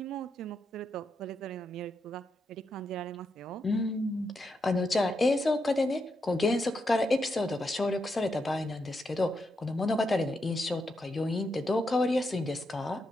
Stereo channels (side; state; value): both; normal; correlation 0.83